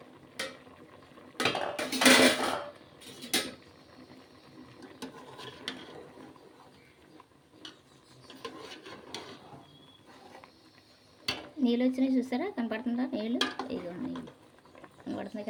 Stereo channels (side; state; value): both; identical; correlation 1.00